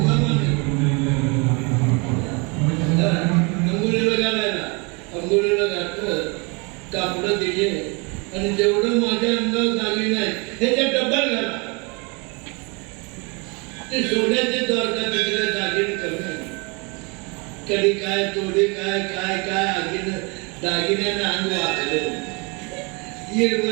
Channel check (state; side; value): quieter; left; 30.4 dB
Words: अंघोळीला घालायला अंघोळीला घातलं कापडं दिले आणि जेवढं माझ्या अंगावर झाली नाही त्याच्या डबल घाला ते सोन्याचे द्वारका तिकडे दागिने कमी कधी काय तोडी काय काय काय आगीनं दागिन्यानं अंग वाकलं